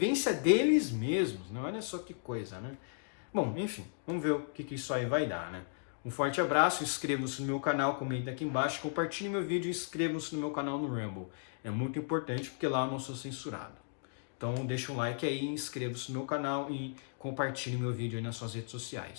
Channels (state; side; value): silent; right; digital silence